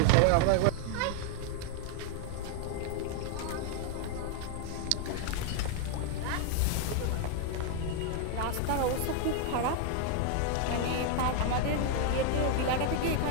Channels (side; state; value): both; different; correlation 0.00